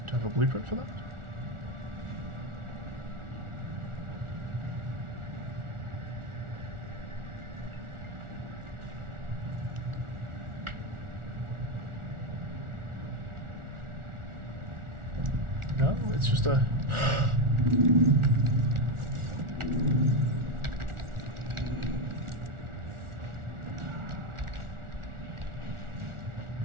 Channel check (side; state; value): left; late; 1.4 ms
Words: Do I have a blueprint for that? No, it's just a...